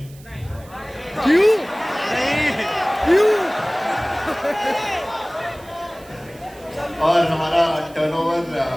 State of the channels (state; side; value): noise; right; hiss, 24 dB below the sound